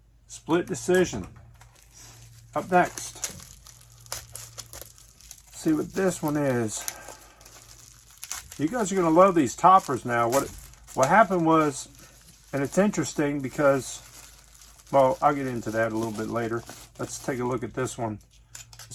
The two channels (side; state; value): both; identical; correlation 1.00